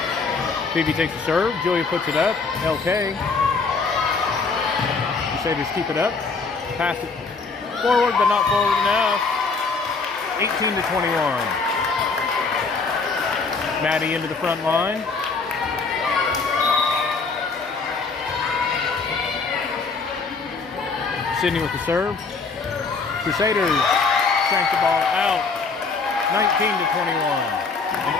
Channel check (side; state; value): right; quieter; 4.5 dB